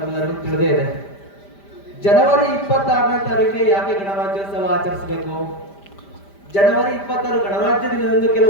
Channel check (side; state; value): right; late; 5.0 ms